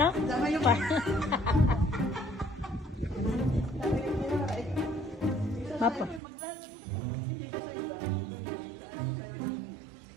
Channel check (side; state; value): left; drops out; at 6.2 s